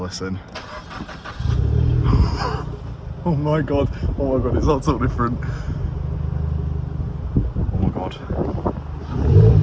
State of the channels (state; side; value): identical; both; correlation 1.00